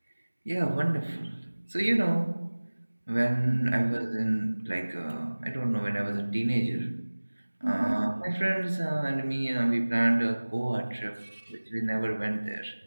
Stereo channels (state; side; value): inverted; both; correlation -1.00